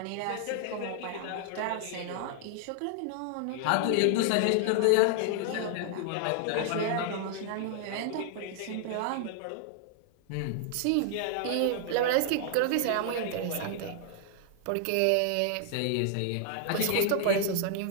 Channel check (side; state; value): both; different; correlation 0.00